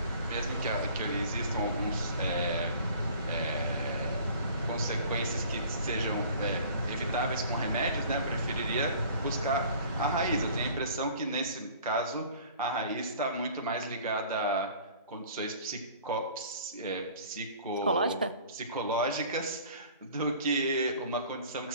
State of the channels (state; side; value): inverted; both; correlation -0.48